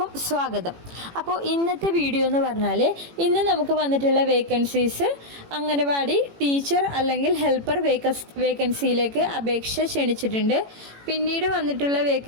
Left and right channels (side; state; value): left; late; 18 ms